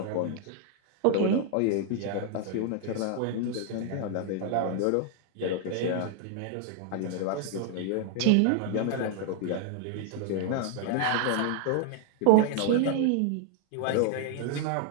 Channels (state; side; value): different; both; correlation 0.00